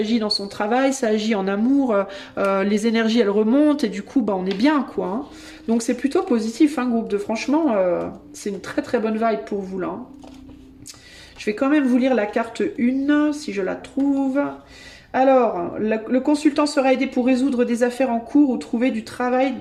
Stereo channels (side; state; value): both; identical; correlation 1.00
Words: dans son travail, ça agit en amour, les énergies elles remontent et du coup bah, on est bien quoi. Hein. Donc c'est plutôt positif hein, groupe de franchement, c'est une très très bonne vibe pour vous là. Hein. Je vais quand même vous lire la carte 1 si je la trouve. Alors, le consultant sera aidé pour résoudre des affaires en cours ou trouver du travail